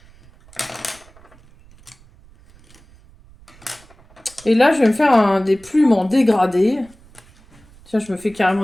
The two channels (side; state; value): right; noise; rumble, 26 dB below the sound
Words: Et là, je vais me faire des plumes en dégradé. Tiens, je me fais